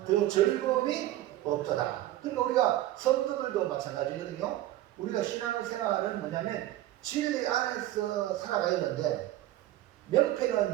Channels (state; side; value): quieter; left; 14.6 dB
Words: 더 즐거움이 없도다. 그러니까 우리가 성도들도 마찬가지거든요. 우리가 신앙생활은 뭐냐면 진리 안에서 살아가야 되는데